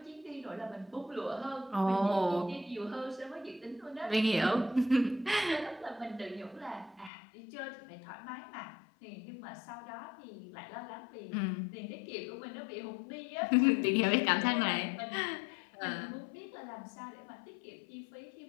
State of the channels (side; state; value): right; drops out; at 7.1 s